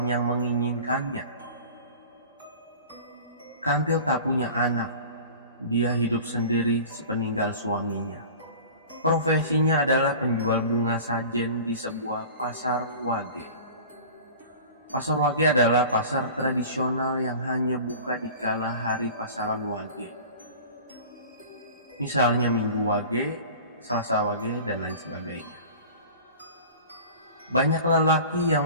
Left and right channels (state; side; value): inverted; both; correlation -0.39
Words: yang menginginkannya. Kantil tak punya anak. Dia hidup sendiri sepeninggal suaminya. Profesinya adalah penjual bunga sajen di sebuah pasar wage. Pasar wage adalah pasar tradisional yang hanya buka di kala hari pasaran wage. Misalnya Minggu wage, Selasa wage, dan lain sebagainya. Banyak lelaki